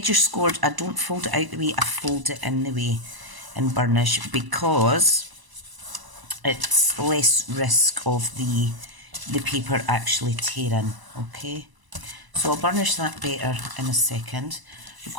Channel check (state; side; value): late; left; 1.0 ms